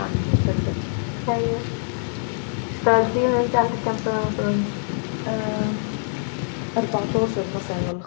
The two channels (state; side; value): silent; right; 63 dB below the other